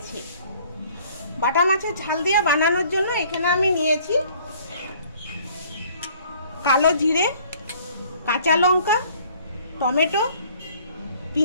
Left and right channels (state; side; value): inverted; both; correlation -0.56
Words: বাটা মাছের ঝাল দিয়ে বানানোর জন্য এখানে আমি নিয়েছি কালো জিরে, কাঁচা লঙ্কা, টমেটো,